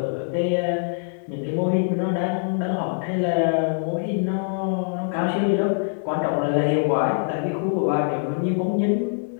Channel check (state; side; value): silent; right; digital silence